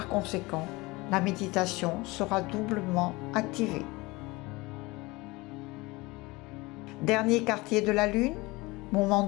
conséquent, la méditation sera doublement activée. Dernier quartier de la lune, moment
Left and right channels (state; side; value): quieter; right; 22.7 dB